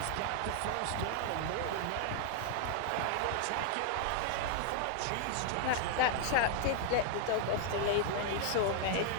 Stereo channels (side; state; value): both; different; correlation 0.00